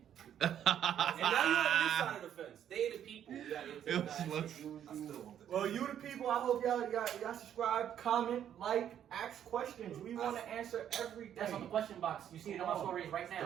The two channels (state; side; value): quieter; left; 9.9 dB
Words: And now you're on this side of the fence. They the people. You gotta get to It the was guys. like- I still want the cow. Well, you the people. I hope y'all subscribe, comment, like, ask questions. We want to answer everything. That's on the question box. You see it on my stories right Still